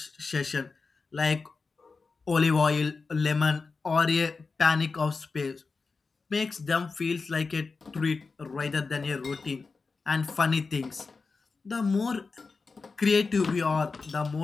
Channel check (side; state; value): right; quieter; 4.4 dB